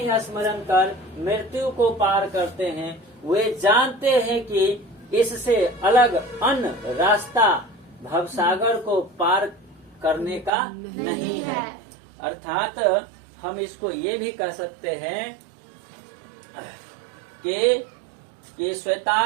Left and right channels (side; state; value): left; drops out; at 10.5 s